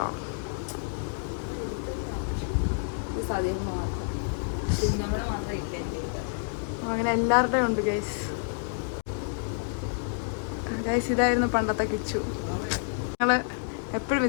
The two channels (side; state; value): right; silent; digital silence